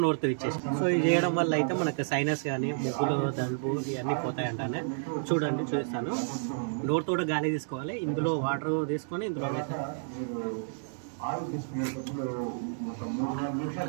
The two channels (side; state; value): left; silent; digital silence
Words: నోరుతో ఇచ్చేసి. సో ఇది చేయడం వల్ల అయితే మనకు సైనస్ కానీ ముగ్గులు దలుపు ఇవన్నీ పోతాయంటానే. చూడండి చూపిస్తాను. డోర్ తోట గాలి తీసుకోవాలి, ఇందులో వాటర్ తీసుకొని ఇందులో